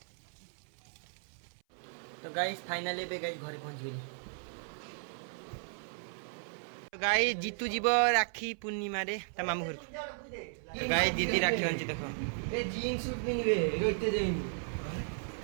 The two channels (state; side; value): silent; left; 54 dB below the other